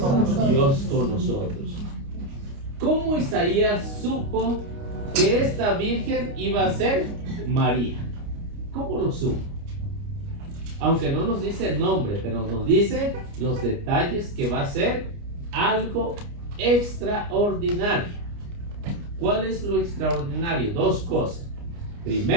Dios con nosotros. ¿Cómo Isaías supo que esta virgen iba a ser María? ¿Cómo lo supo? Aunque no nos dice el nombre, pero nos dice los detalles, que va a ser algo extraordinario. ¿Cuál es lo extraordinario? 2 cosas.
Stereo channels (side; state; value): left; late; 29 ms